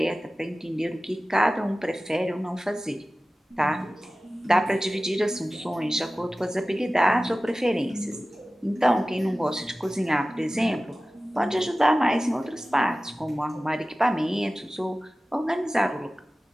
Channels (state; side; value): normal; both; correlation 0.96